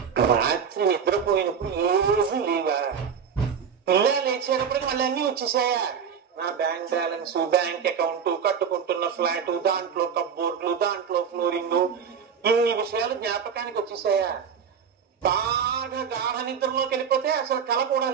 రాత్రి నిద్రపోయినప్పుడు ఏమీ లేవా, పిల్ల లేచేటప్పటికి మళ్ళీ అన్ని వచ్చేసాయా? నా బ్యాంక్ బ్యాలెన్స్, బ్యాంక్ అకౌంట్, కట్టుకుంటున్న ఫ్లాట్, దాంట్లో కప్బోర్డ్లు, దాంట్లో ఫ్లోరింగ్, ఇన్ని విషయాలు జ్ఞాపకానికి వచ్చేసాయా? బాగా గాఢ నిద్రలోకి వెళ్ళిపోతే అసలు కళ కూడా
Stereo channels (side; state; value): left; quieter; 7.1 dB